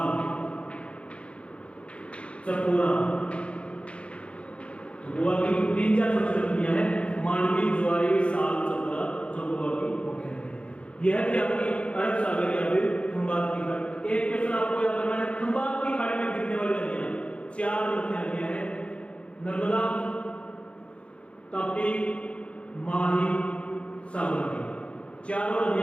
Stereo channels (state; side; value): late; right; 0.060 ms